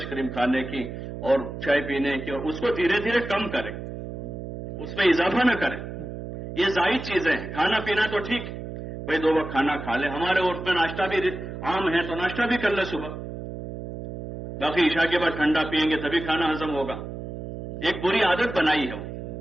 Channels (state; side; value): noise; right; hum, 9 dB below the sound